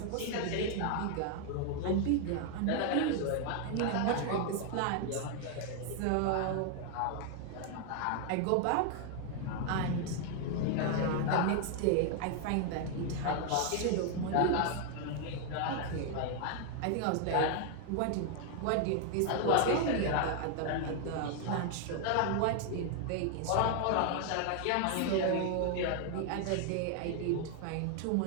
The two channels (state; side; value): different; both; correlation 0.00